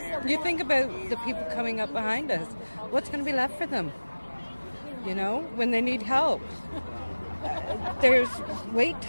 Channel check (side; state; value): both; inverted; correlation -1.00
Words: think about the people coming up behind us. What's going to be left for them? When they need help. There's wait